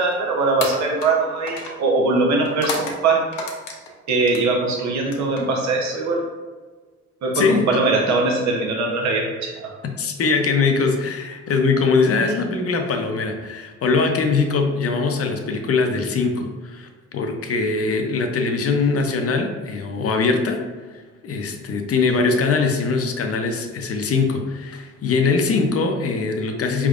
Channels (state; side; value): normal; both; correlation 0.33